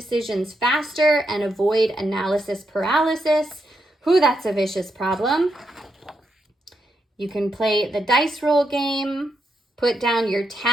faster and avoid analysis paralysis. Ooh, that's a vicious problem. You can play the dice roll game, put down your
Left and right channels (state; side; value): normal; both; correlation 0.82